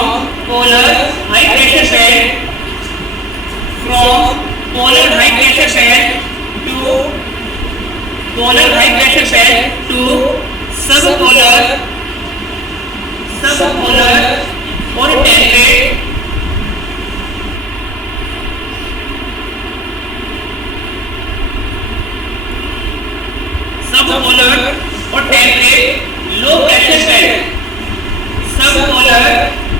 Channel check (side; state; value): both; normal; correlation 0.41